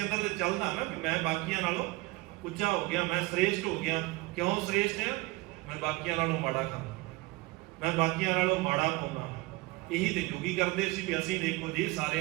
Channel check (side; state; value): left; quieter; 22.1 dB